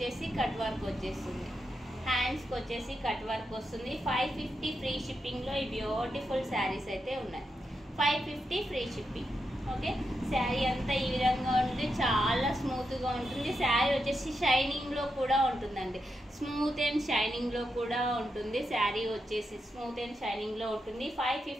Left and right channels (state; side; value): normal; both; correlation 0.85